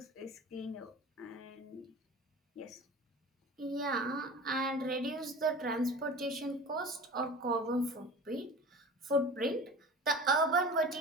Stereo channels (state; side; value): normal; both; correlation 0.36